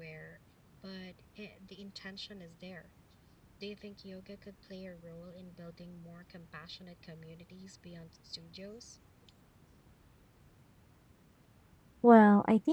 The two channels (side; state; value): both; identical; correlation 1.00